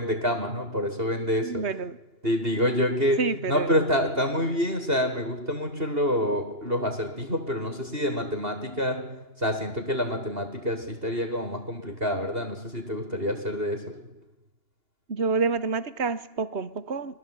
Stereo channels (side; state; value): left; late; 2.7 ms